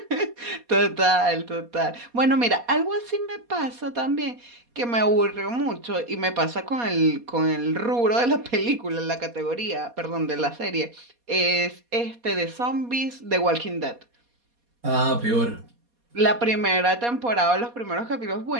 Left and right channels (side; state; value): left; late; 4.2 ms